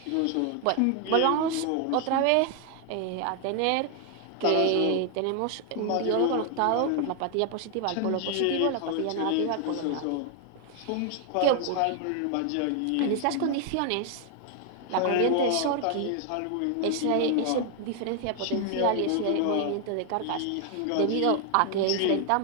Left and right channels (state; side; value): different; both; correlation 0.00